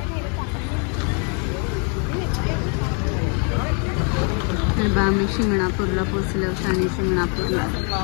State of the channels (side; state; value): right; quieter; 38.4 dB